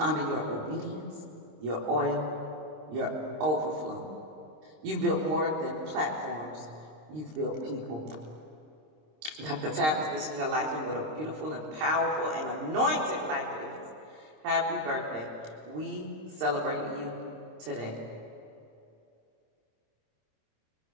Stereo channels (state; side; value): late; left; 26 ms